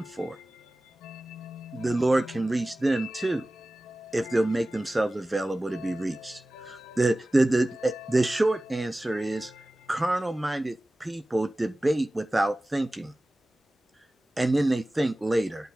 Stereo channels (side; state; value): both; normal; correlation 0.96